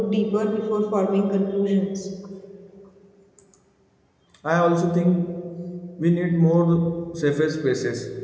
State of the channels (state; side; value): identical; both; correlation 1.00